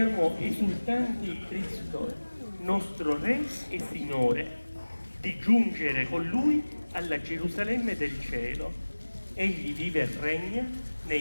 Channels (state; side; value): inverted; both; correlation -1.00